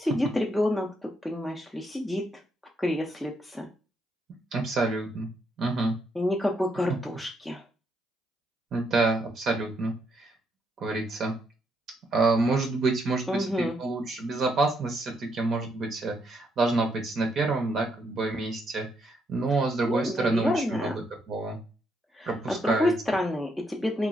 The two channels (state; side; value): normal; both; correlation 0.76